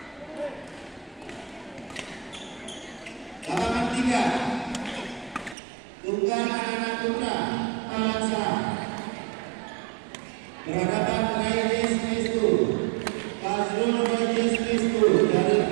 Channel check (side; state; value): left; drops out; at 5.6 s